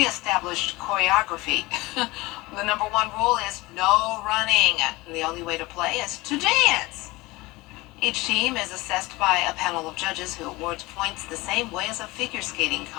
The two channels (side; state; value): right; quieter; 21.4 dB